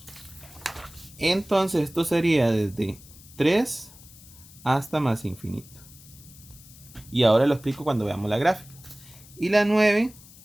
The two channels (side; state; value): left; noise; hiss, 21 dB below the sound